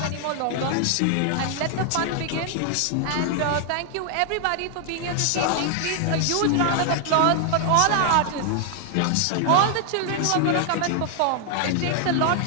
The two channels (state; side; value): different; both; correlation 0.00